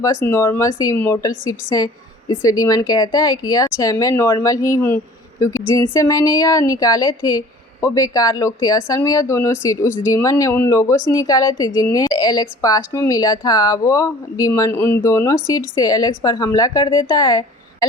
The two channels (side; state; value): both; normal; correlation 0.47